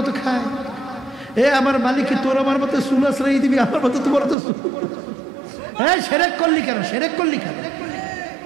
খায়? আমার মালিক কি তোর আমার মতো চুল আশ্রয় দিবি? আমার মতো তোমার তো সেরেক করলি কেন? সেরেক করলি কেন?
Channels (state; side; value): drops out; left; at 4.4 s